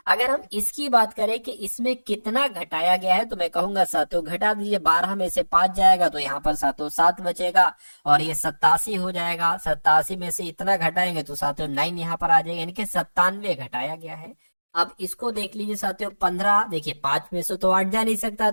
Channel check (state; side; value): inverted; both; correlation -1.00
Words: अगर हम इसकी बात करें कि इसमें कितना घटाया गया है, तो मैं कहूंगा साथियों घटा दीजिए। 12 में से 5 जाएगा तो यहाँ पर साथियों 7 बचेगा, और ये 87 हो जाएगा। 87 में से इतना घटाएंगे तो साथियों 9 यहाँ पर आ जाएगा, यानी कि 97 घटाया गया है। अब इसको देख लीजिए साथियों 15, देखिए 5 में से तो 8 जा नहीं सकता,